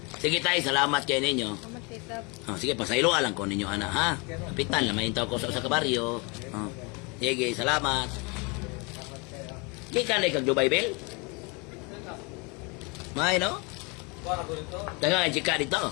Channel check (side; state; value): right; quieter; 30.0 dB